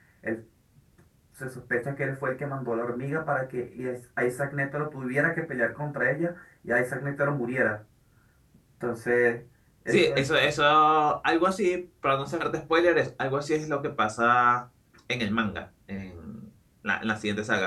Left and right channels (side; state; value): both; identical; correlation 1.00